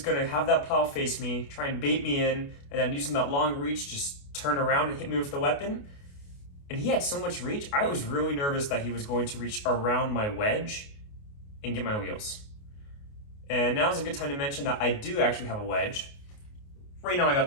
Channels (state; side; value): late; right; 28 ms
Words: have that plow face me, try and bait me in, and then using that long reach, just turn around and hit me with the weapon. And he had so much reach, I was really nervous that he was going to reach around my wedge and get my wheels. And now is a good time to mention that I do actually have a wedge. Right now I got